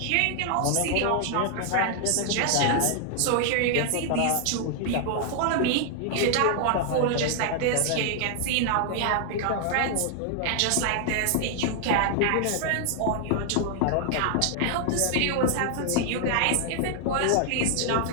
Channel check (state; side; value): different; both; correlation 0.00